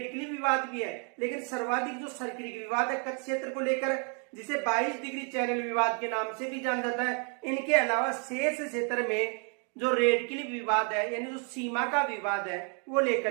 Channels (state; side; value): quieter; left; 38.6 dB